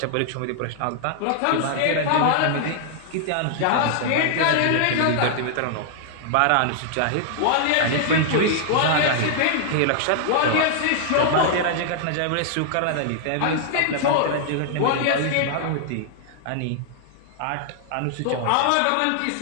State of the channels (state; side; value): different; both; correlation -0.01